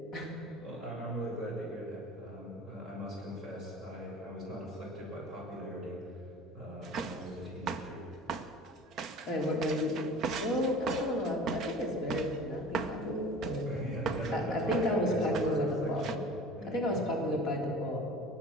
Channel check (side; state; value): both; normal; correlation 0.41